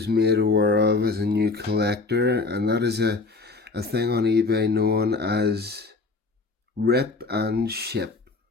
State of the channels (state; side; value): quieter; right; 3.8 dB